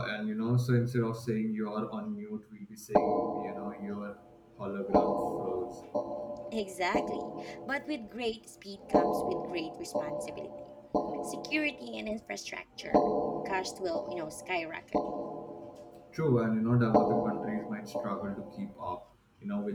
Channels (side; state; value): both; identical; correlation 1.00